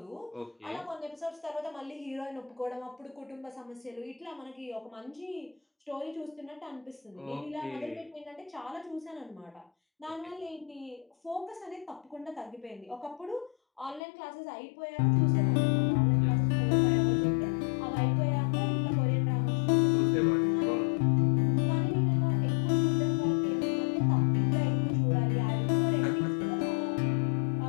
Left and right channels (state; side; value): drops out; right; at 14.0 s